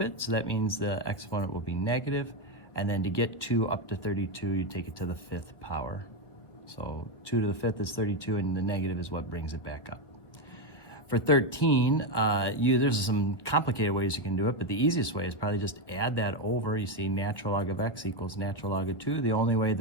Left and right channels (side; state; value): right; late; 1.7 ms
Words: it. So that means the exponent will be negative. And then to get 2 up to 32, you take it to the 5th power. So 2 to the 5th is 32, and the negative is what brings it back up. For 13, there's some complicated ways you can do it, but the easiest way is probably just add that over. You see natural log of x equals natural log of 2. The only way